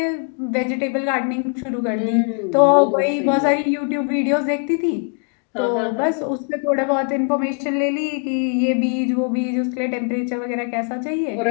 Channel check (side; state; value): right; quieter; 37.5 dB